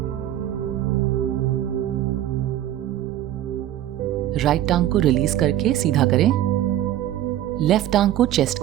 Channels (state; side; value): quieter; left; 12.6 dB